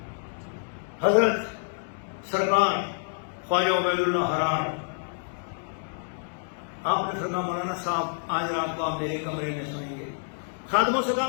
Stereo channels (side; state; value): right; silent; digital silence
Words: حضرت سرکار خواجہ عبید اللہ احرار آپ نے فرمایا مولانا صاحب آج رات کو آپ میرے کمرے میں سوئیں گے۔ خادموں سے کہا